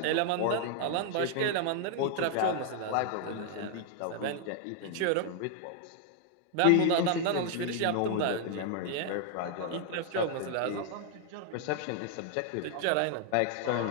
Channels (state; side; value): different; both; correlation 0.00